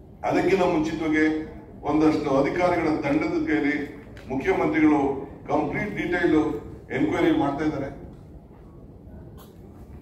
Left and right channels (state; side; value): identical; both; correlation 1.00